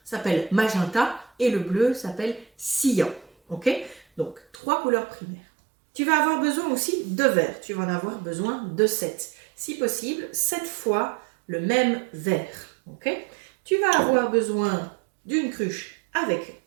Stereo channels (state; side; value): drops out; left; at 4.5 s